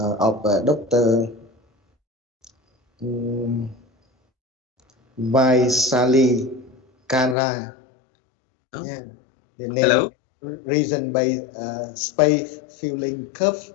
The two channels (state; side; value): drops out; right; at 7.4 s